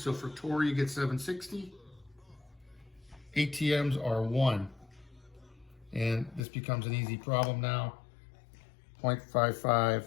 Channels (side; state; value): right; drops out; at 6.5 s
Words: So for torr you get 760. ATMs are 1. And this becomes an easy problem now.